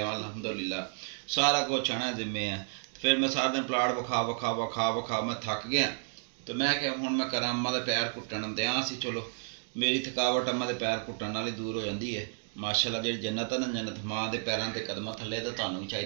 सारा कुछ है ना जिम्मे है। फिर मैं सारा दिन प्लाट विखा मैं थक गया। तो मैं क्या हूँ मैं करा अम्मा के पैर कुट्टन दिया सी। चलो मेरी थकावट अम्मा के पैर कुट्टन नाल ही दूर हो जाती है। माशाअल्लाह जी जन्नत है ना जन्नत माँ के पैरों के कदम थले। तो तुहानू भी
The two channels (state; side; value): silent; left; 57 dB below the other